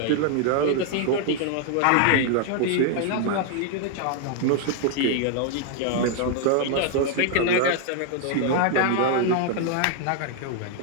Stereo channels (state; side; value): different; both; correlation 0.00